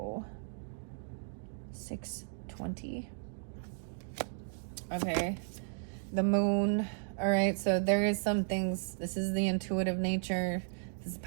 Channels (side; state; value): left; silent; digital silence